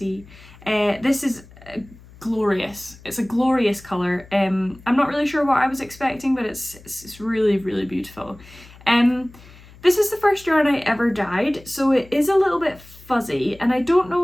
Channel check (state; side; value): noise; left; hum, 22 dB below the sound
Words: This is glorious. It's a glorious colour. I'm not really sure what I was expecting, but it's really, really beautiful. This is the first yarn I ever dyed, so it is a little bit fuzzy, and I don't